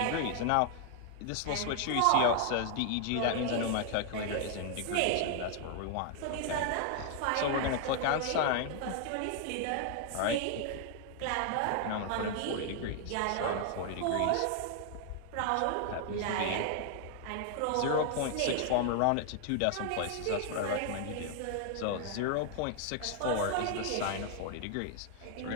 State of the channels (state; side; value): different; both; correlation 0.00